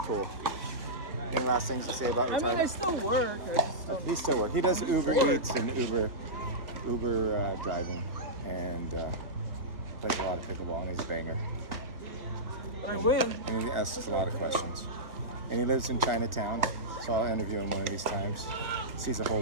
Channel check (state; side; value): late; left; 1.6 ms